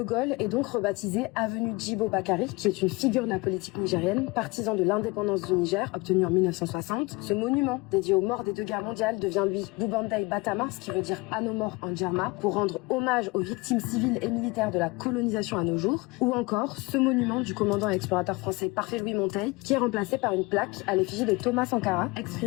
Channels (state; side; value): quieter; right; 24.4 dB